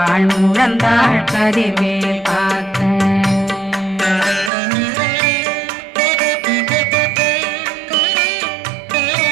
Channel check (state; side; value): drops out; left; at 4.5 s